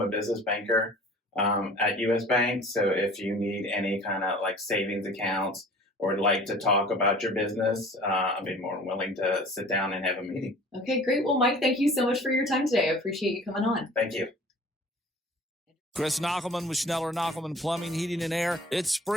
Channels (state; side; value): normal; both; correlation 0.46